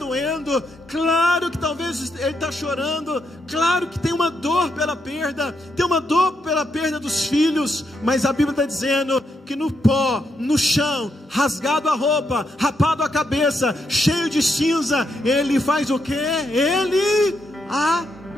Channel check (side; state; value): both; normal; correlation 0.80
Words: claro que talvez ele está chorando, claro que tem uma dor pela perda, tem uma dor pela perda dos filhos, mas a Bíblia está dizendo que no pó, no chão, rasgado a roupa, rapado a cabeça, cheio de cinza, ele faz o quê? Ele